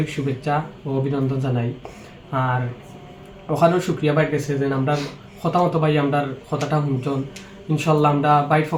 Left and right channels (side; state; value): both; identical; correlation 1.00